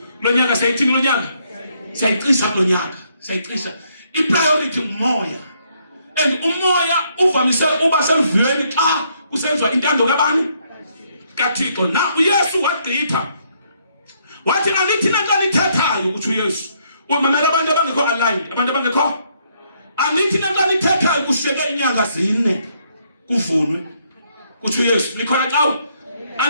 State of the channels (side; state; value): both; inverted; correlation -0.72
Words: Lo nyaka sayithini lo nyaka? Sayicisa lo nyaka. Sayicisa. I-priority umoya. And umoya uvamise uba selvuyeni xa kusenziwa intando kabani? kaThixo. Na uYesu wagqitha. Wathi anithi nanto nithethayo kuthi uYesu. Umamela abantu abangekho aligned, abantu abangekho. Anithi nanto nithethayo kushiyeke inyanga 4 kuvunwe. Kuthi uYesu likhona xa